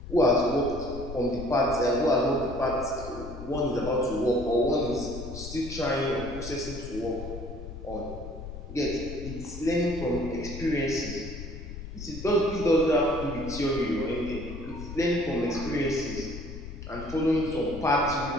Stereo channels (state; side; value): noise; left; rumble, 10 dB below the sound